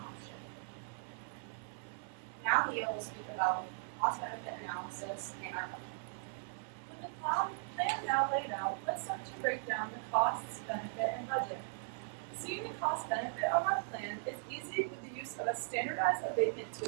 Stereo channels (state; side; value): silent; left; 52 dB below the other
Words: option. Now Leo will speak about cost-benefit analysis and our budget. With the plan now laid out, let's start to break down the costs, benefit, and budget. Seeing the cost-benefit of our plan is easy with the use of a standardized abatement